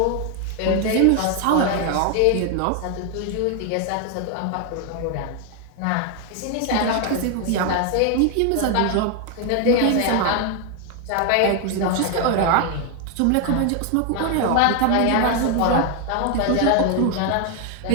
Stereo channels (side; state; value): both; different; correlation 0.00